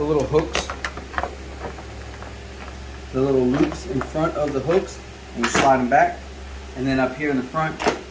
little hooks, the little loops in front of the hooks, and you slide them back. And then up here in the front,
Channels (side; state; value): both; identical; correlation 1.00